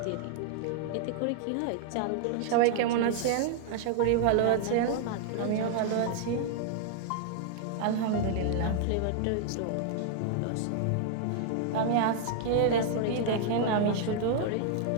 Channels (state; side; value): different; both; correlation 0.00